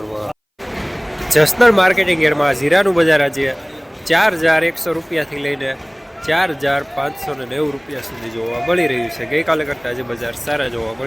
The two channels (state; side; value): identical; both; correlation 1.00